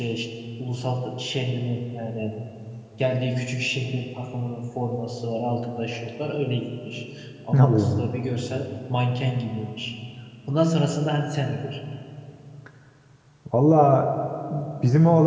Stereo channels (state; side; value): identical; both; correlation 1.00